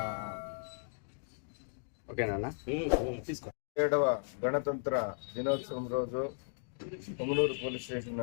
ఓకేనా తీసుకో. 7వ గణతంత్ర దినోత్సవం రోజు పొంగనూరు పోలీస్ స్టేషన్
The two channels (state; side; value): silent; right; digital silence